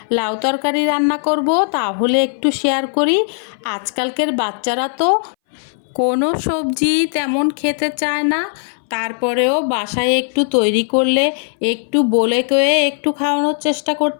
লাউ তরকারি রান্না করব, তাহলে একটু শেয়ার করি। আজকালকের বাচ্চারা তো কোনো সবজি তেমন খেতে চায় না, তারপরেও বাসায় একটু তৈরি করলে একটু বলে কয়ে একটু খাওয়ানোর চেষ্টা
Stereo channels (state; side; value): silent; right; 63 dB below the other